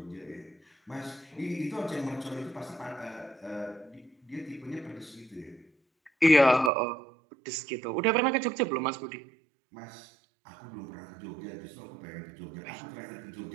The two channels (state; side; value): drops out; left; at 6.7 s